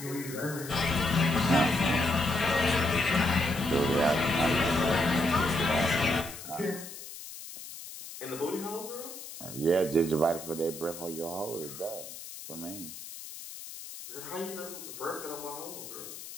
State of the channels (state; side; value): noise; left; hiss, 12 dB below the sound